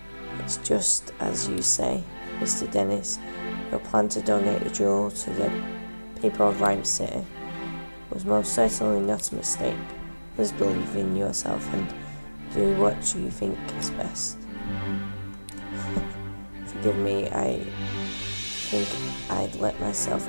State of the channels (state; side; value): inverted; both; correlation -1.00